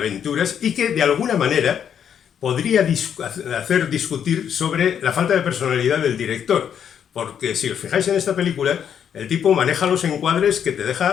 y que de alguna manera podría hacer discutir sobre la falta de personalidad del director, porque si os fijáis en esta película, el tipo maneja los encuadres que te deja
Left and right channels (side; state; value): right; quieter; 8.5 dB